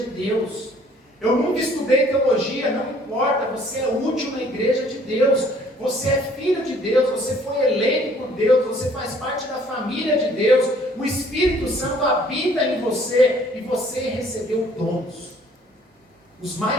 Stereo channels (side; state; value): both; normal; correlation 0.58